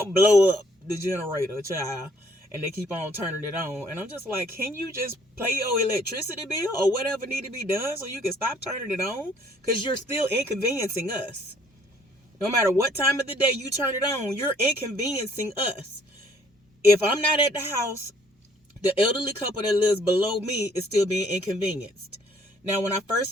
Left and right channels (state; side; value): normal; both; correlation 0.62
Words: blow up the generator, child. And they keep on turning it on. And I'm just like, can you just pay your electricity bill or whatever need to be done so you can stop turning it on? Because you're still inconveniencing us. No matter what time of the day you turn it on, you're inconveniencing us. If I'm not at the house, the elderly couple that lives below me is still being inconvenienced. Now, when I first